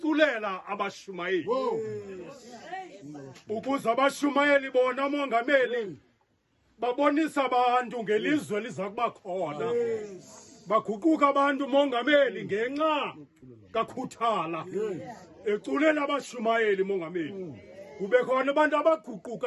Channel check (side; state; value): both; identical; correlation 1.00